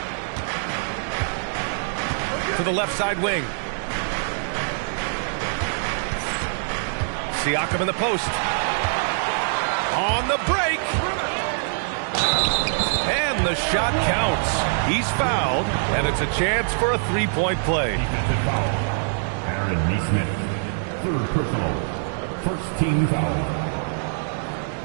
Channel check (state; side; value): silent; left; digital silence